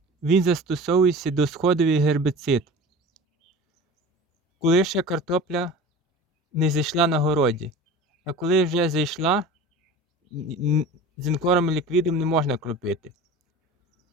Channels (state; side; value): normal; both; correlation 0.37